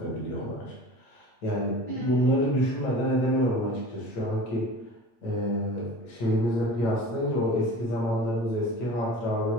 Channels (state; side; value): late; right; 8.5 ms